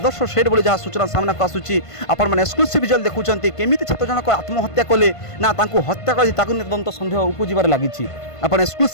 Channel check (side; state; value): right; late; 1.5 ms